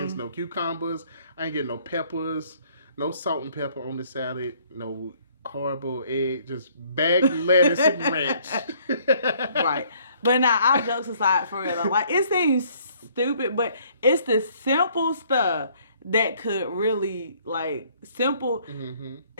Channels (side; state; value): both; inverted; correlation -0.62